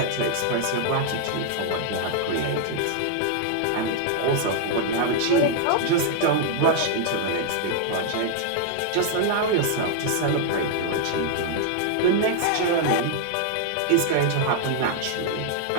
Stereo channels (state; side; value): different; both; correlation 0.00